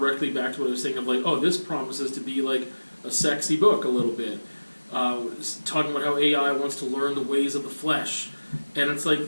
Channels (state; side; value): inverted; both; correlation -1.00